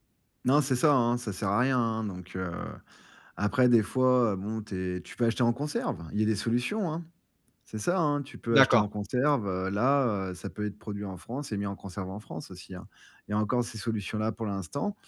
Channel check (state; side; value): identical; both; correlation 1.00